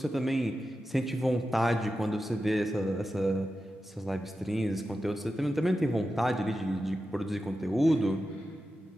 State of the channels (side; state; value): both; normal; correlation 0.91